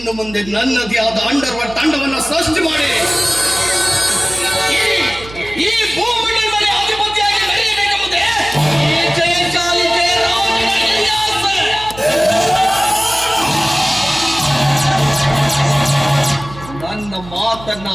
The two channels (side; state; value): right; noise; hum, 16 dB below the sound